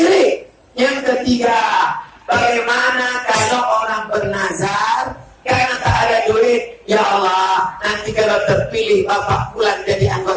Yang ketiga, bagaimana kalau orang bernazar karena tak ada duit? Ya Allah, nanti kalau terpilih Bapak Fulan jadi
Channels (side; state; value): both; identical; correlation 1.00